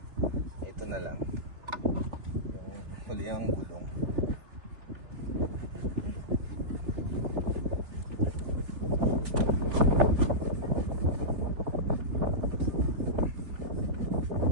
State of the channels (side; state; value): left; late; 3.3 ms